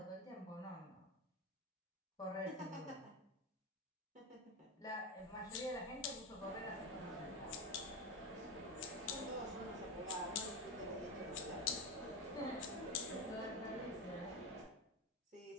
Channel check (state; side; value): normal; both; correlation 0.17